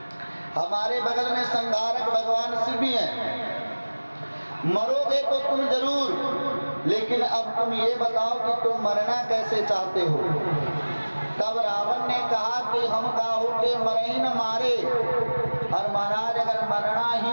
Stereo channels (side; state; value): both; inverted; correlation -1.00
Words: हमारे बगल में संहारक भगवान शिव भी हैं। मरोगे तो तुम जरूर, लेकिन अब तुम ये बताओ कि तुम मरना कैसे चाहते हो। तब रावण ने कहा कि हम काहू के मरे ही न मारे। और महाराज, अगर मरना